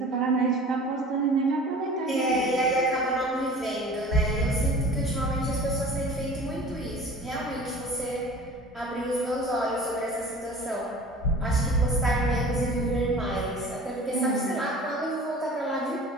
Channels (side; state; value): both; normal; correlation 0.43